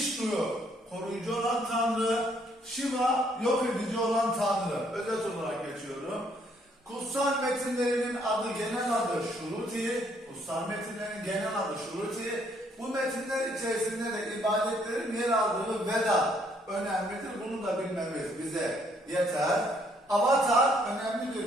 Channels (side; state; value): both; normal; correlation 0.68